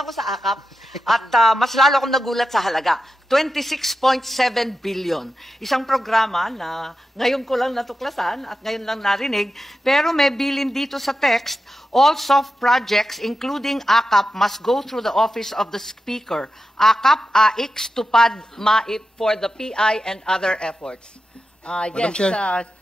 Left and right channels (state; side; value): normal; both; correlation 0.91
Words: sa AKAP at mas lalo akong nagulat sa halaga. 26.7 billion. Isang programa na ngayon ko lang natuklasan at ngayon lang narinig, pero may bilin dito sa text, all soft projects including AKAP must go through the office of the Speaker. AKAP, AIX, TUPAD, MAIP for the PI and other efforts. Madam Chair,